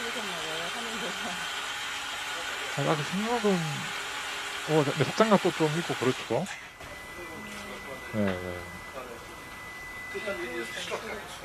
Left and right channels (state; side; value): identical; both; correlation 1.00